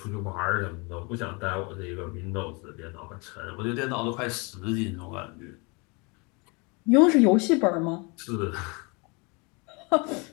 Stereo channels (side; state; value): right; quieter; 29.9 dB